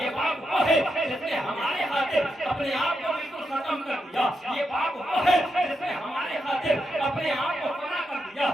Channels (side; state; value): both; normal; correlation 0.84